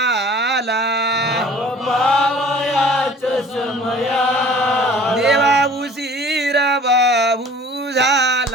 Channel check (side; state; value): both; normal; correlation 0.48